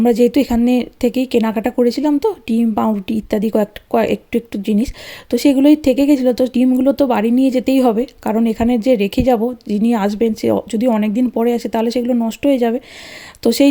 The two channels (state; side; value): identical; both; correlation 1.00